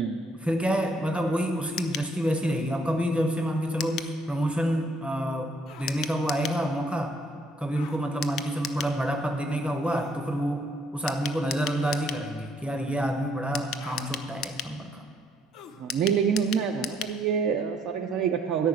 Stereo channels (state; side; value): normal; both; correlation 0.68